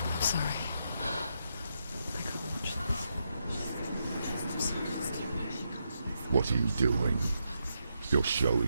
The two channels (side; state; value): both; inverted; correlation -0.82